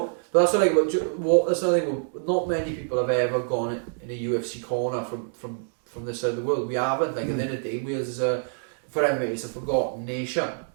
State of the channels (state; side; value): silent; left; digital silence